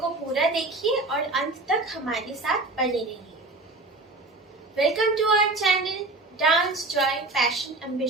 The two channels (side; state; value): left; quieter; 3.1 dB